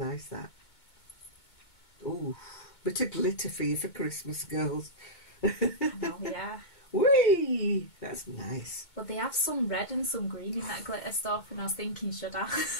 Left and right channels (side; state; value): right; late; 2.2 ms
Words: that. Ooh. Bit of glitter for you for Christmas, girls. I know, yeah. Whee! That's nice. But they have some red and some green in that glitter stuff, and I was thinking, should I?